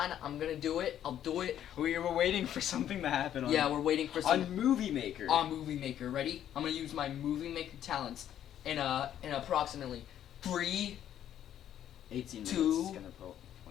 gonna do it. I'll do it. We were waiting for something to happen. On, Yeah, we're waiting for some on Movie Maker. on Movie Maker. Ready? I'm gonna use my Movie Maker talents in approximately 3, 18 minutes. 2, It's gonna point up.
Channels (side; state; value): right; quieter; 10.7 dB